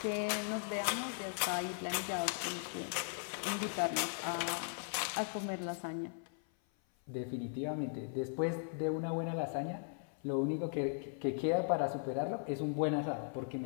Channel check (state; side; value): silent; right; 52 dB below the other